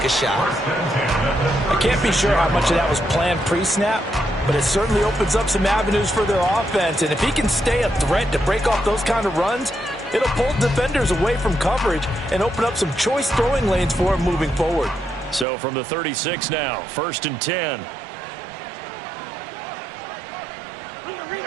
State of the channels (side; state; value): left; drops out; at 15.5 s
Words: a shot. I can't be sure how much of that was planned pre-snap, but it certainly opens up some avenues for their offense. And if he can stay a threat to break off those kind of runs, it'll pull defenders away from coverage and open up some choice throwing lanes for him moving forward. So from the 36 now, 1st and 10.